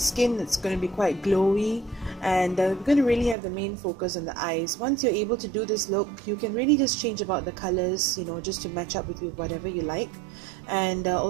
It's going to be quite glowy, and we're going to really have the main focus on the eyes. Once you're able to do this look, you can really just change about the colors, just to match up with whatever you like, and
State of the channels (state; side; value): drops out; left; at 3.4 s